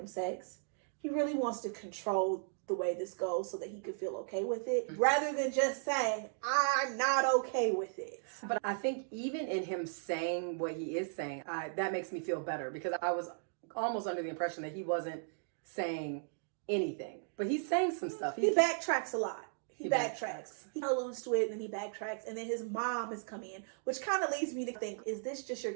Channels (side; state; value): left; silent; digital silence